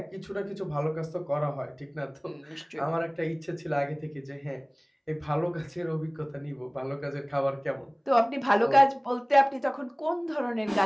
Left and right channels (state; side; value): identical; both; correlation 1.00